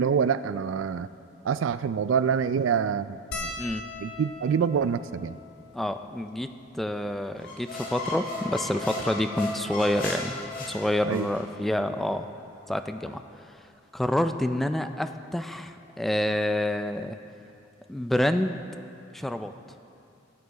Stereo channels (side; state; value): both; normal; correlation 0.53